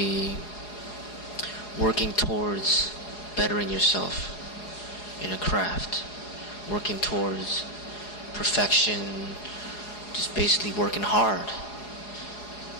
working towards bettering yourself in a craft, working towards perfection, just basically working hard.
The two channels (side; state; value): right; late; 4.8 ms